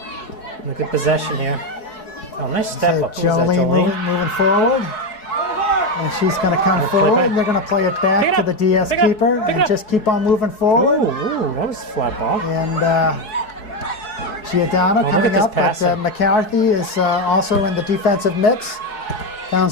Look at possession here. Oh, nice step So up. Who's that, Jolene moving forward. And she's going to come Play forward. back. And they're going to play it Pick back it to up. the DS Pick it up. keeper Pick it and up. just keep on moving forward. Ooh, that was a flat ball. And Giordano look coming at this up, but passing. McCarthy is also in the defensive mix.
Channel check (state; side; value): late; right; 4.7 ms